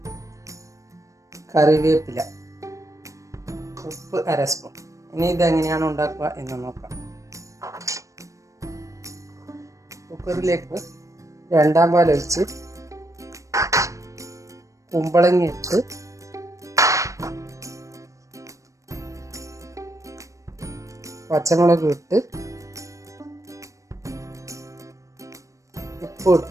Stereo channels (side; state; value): left; late; 0.15 ms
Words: കറിവേപ്പില, ഉപ്പ് 1/2 സ്പൂൺ. ഇനി ഇതെങ്ങനെയാണ് ഉണ്ടാക്കുക എന്ന് നോക്കാം. കുക്കറിലേക്ക് 2-ാം പാൽ ഒഴിച്ച് കുമ്പളങ്ങ ഇട്ട് പച്ചമുളക് ഇട്ട് ഉപ്പ്